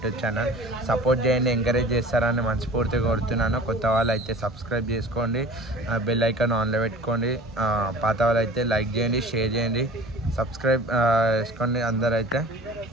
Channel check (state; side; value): normal; both; correlation 0.42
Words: ఛానల్ సపోర్ట్ చేయండి, ఎంకరేజ్ చేస్తారని మనస్ఫూర్తిగా కోరుతున్నాను. కొత్త వాళ్ళు అయితే సబ్స్క్రైబ్ చేసుకోండి, బెల్ ఐకాన్ ఆన్లో పెట్టుకోండి. పాత వాళ్ళు అయితే లైక్ చేయండి, షేర్ చేయండి, సబ్స్క్రైబ్ చేసుకోండి అందరూ అయితే.